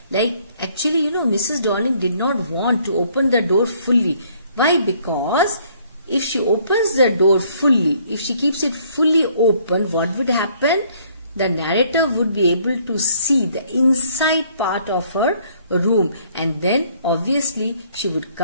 Like, actually, Mrs. Dorling did not want to open the door fully. Why? Because if she opens the door fully, if she keeps it fully open, what would happen? The narrator would be able to see the inside part of her room, and then obviously she would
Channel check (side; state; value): both; inverted; correlation -0.63